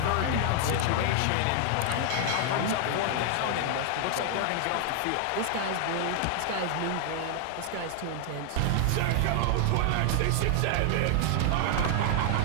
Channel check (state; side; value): different; both; correlation 0.00